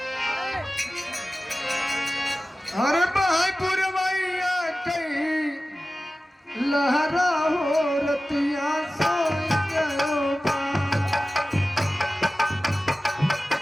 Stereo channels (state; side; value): normal; both; correlation 0.96